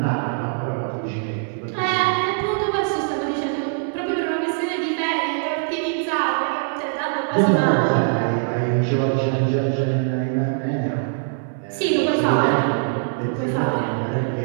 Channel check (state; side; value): silent; left; 58 dB below the other